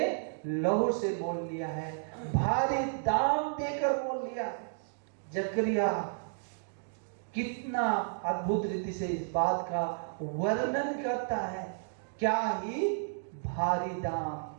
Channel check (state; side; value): silent; left; digital silence